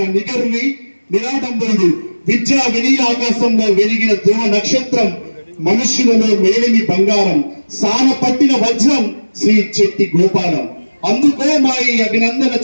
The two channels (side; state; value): both; inverted; correlation -1.00